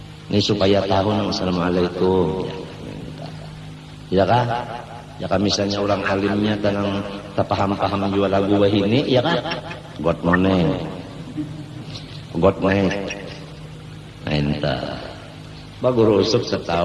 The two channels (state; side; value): identical; both; correlation 1.00